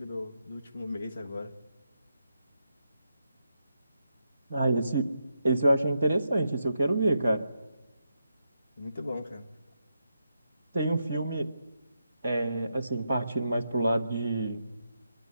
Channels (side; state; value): both; inverted; correlation -0.83